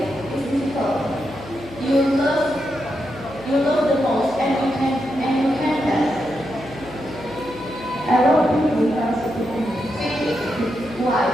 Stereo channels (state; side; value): noise; left; hum, 16 dB below the sound